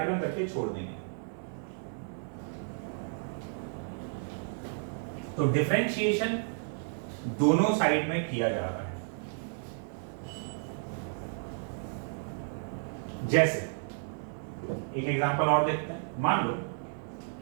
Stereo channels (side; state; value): left; silent; 56 dB below the other